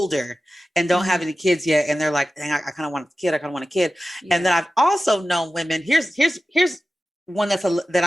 and don't have any kids yet. And they're like, dang, I kind of want a kid. I kind of want a kid. Yeah. And then I've also known women, here's one that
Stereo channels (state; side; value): normal; both; correlation 0.94